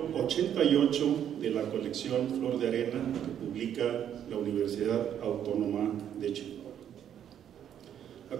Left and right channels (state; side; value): quieter; left; 9.7 dB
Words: 88 de la colección Flor de Arena que publica la Universidad Autónoma de Chihuahua. A